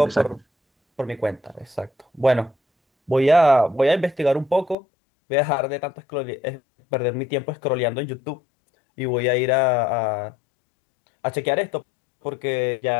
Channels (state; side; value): drops out; right; at 4.8 s